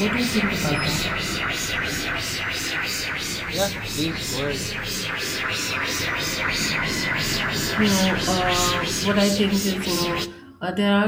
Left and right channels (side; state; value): both; identical; correlation 1.00